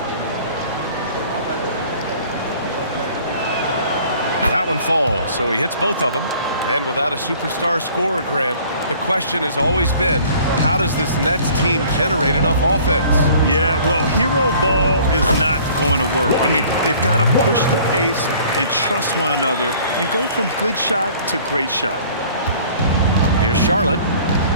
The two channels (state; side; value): inverted; both; correlation -0.52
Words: That one falls, so he hits both of them. And without a superstar scorer, Grant, the question has always been, how does this Nets team generate enough offense? Yeah, well, hero ball is not going to work. I mean, they've got to push the pace and trust one another and go from good shot to great shot. Here's Charlotte,